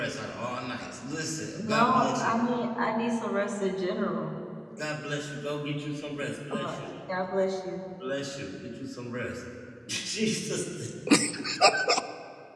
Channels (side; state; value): both; identical; correlation 1.00